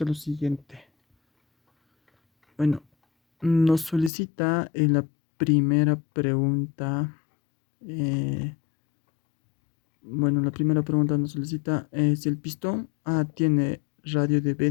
lo siguiente. Bueno, nos solicita en la primera pregunta. La primera pregunta nos solicita si el pistón A tiene radio de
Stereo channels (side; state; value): right; drops out; at 4.1 s